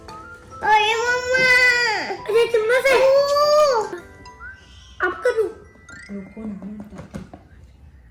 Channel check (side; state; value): both; identical; correlation 1.00